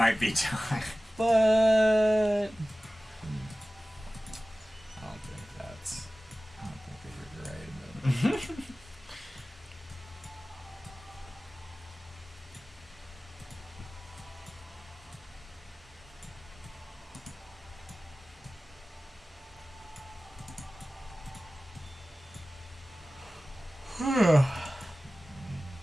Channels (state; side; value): normal; both; correlation 0.97